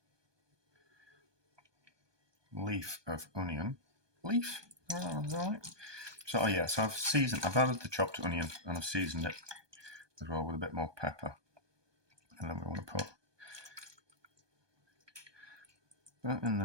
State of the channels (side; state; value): left; late; 1.2 ms